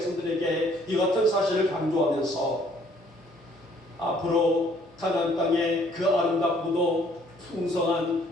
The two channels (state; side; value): normal; both; correlation 0.62